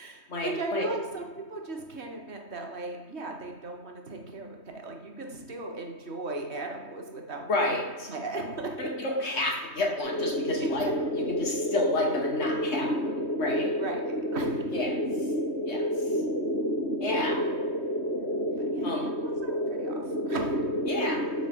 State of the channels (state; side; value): late; right; 3.2 ms